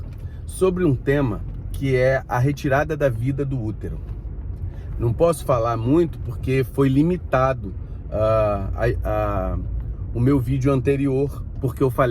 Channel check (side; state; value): both; identical; correlation 1.00